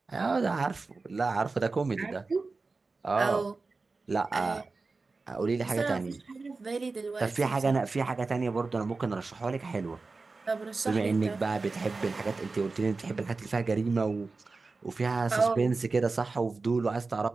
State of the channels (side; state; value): left; quieter; 3.9 dB